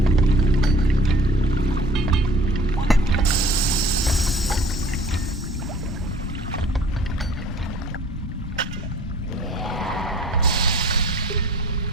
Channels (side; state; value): both; normal; correlation 0.50